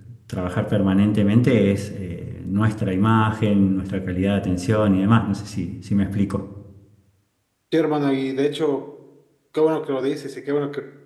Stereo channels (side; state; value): both; identical; correlation 1.00